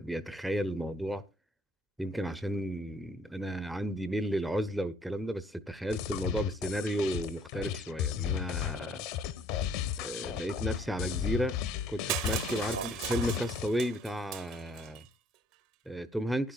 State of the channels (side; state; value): both; normal; correlation 0.62